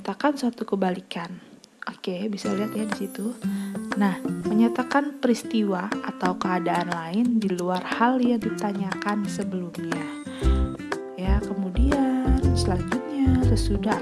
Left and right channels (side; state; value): both; identical; correlation 1.00